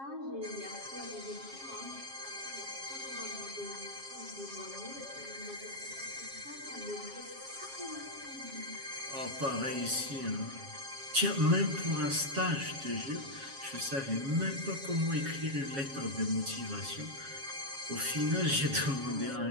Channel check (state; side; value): late; left; 7.4 ms